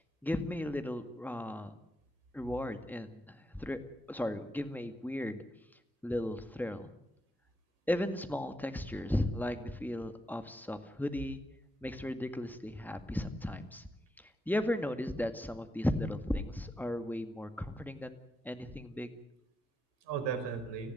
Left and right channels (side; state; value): both; normal; correlation 0.83